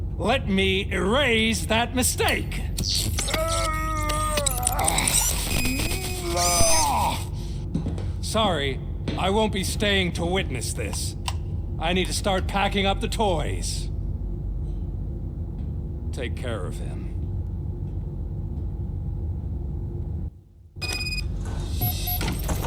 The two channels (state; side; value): identical; both; correlation 1.00